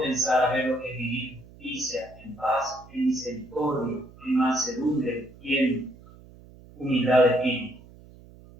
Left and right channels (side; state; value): right; noise; hum, 22 dB below the sound